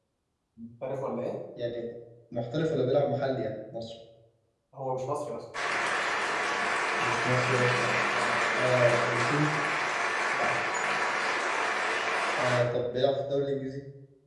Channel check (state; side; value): identical; both; correlation 1.00